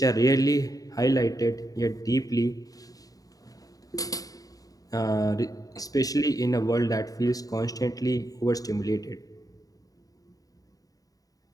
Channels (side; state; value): right; late; 0.18 ms